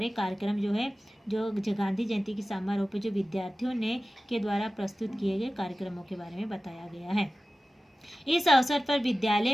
कार्यक्रम जो है जो गांधी जयंती की समारोह पे जो विद्यार्थियों ने के द्वारा प्रस्तुत किए गए कार्यक्रमों के बारे में बताया गया है। इस अवसर पर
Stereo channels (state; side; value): normal; both; correlation 0.96